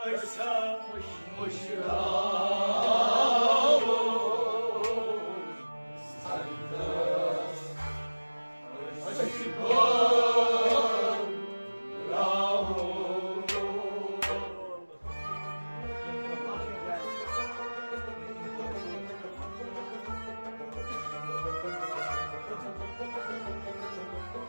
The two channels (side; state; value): both; inverted; correlation -1.00